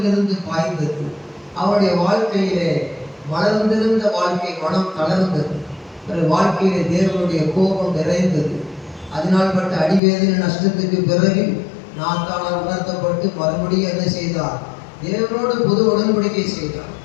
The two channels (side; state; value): right; drops out; at 10.0 s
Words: இருந்து பாய்ந்தது. அவனுடைய வாழ்க்கையிலே வளர்ந்திருந்த வாழ்க்கை மனம் தளர்ந்தது. வாழ்க்கையிலே தேவனுடைய கோபம் நிறைந்தது. அதனால் பட்ட அடிவேதனை நஷ்டத்துக்கு பிறகு நாத்தானால் உணர்த்தப்பட்டு மறுபடியும் என்ன செய்தார்? தேவனோடு புது உடன்படிக்கை செய்தார்.